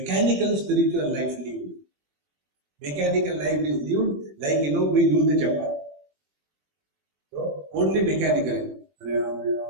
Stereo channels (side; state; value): left; late; 21 ms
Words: spiritual life lived. Mechanical life is lived like we do the japa. So only mechanically.